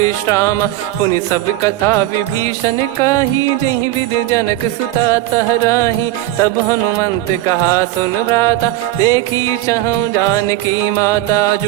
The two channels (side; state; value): left; quieter; 15.6 dB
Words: पुनि सब कथा विभीषण काही, जेहि विधि जनक सुता तहराही। तब हनुमंत कहा सुन भ्राता, देखी चहु जानकी माता।